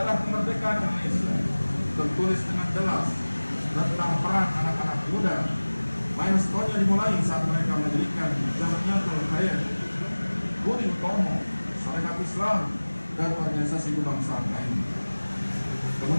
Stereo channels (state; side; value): inverted; both; correlation -1.00